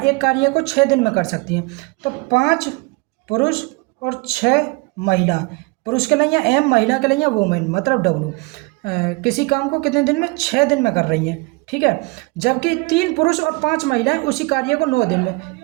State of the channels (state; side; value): quieter; left; 26.9 dB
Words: कार्य को 6 दिन में कर सकती हैं। तो 5 पुरुष और 6 महिला, पुरुष के लिए एम, महिला के लिए वुमेन मतलब डब्लू, किसी काम को कितने दिन में 6 दिन में कर रही हैं। ठीक है, जबकि 3 पुरुष और 5 महिलाएं उसी कार्य को 9 दिन में,